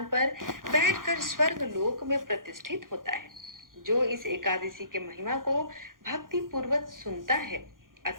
पर बैठकर स्वर्ग लोक में प्रतिष्ठित होता है। जो इस एकादशी के महिमा को भक्ति पूर्वक सुनता है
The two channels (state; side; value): late; left; 0.90 ms